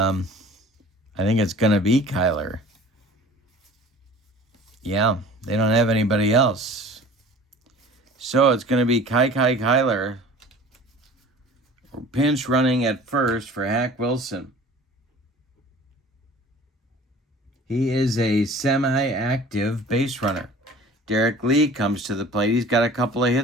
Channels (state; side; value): normal; both; correlation 0.45